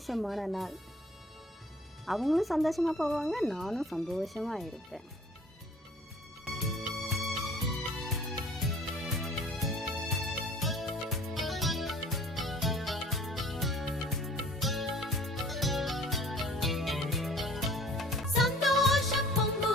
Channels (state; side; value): normal; both; correlation 0.49